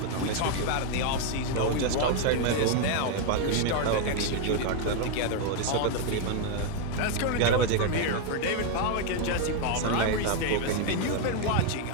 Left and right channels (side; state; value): both; different; correlation 0.01